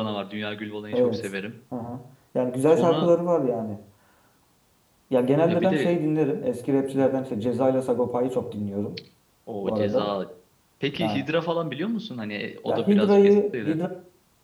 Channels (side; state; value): both; identical; correlation 1.00